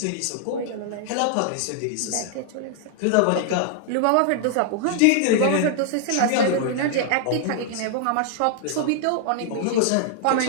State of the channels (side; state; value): both; different; correlation 0.00